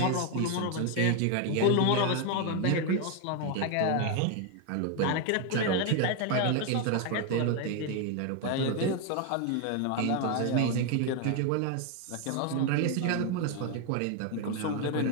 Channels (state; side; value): different; both; correlation 0.01